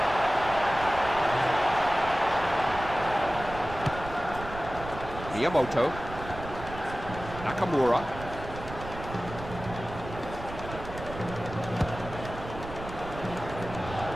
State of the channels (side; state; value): right; noise; rumble, 11 dB below the sound